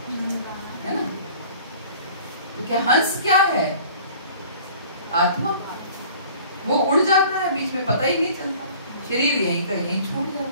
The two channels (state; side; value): inverted; both; correlation -0.48